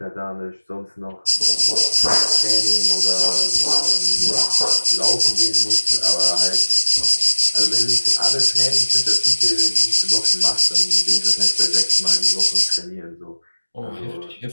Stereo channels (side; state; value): both; inverted; correlation -1.00